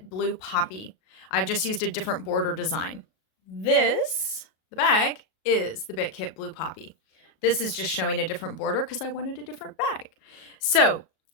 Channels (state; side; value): late; right; 37 ms